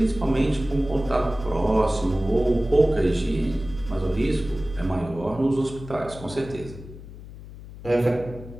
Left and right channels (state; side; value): noise; left; hum, 15 dB below the sound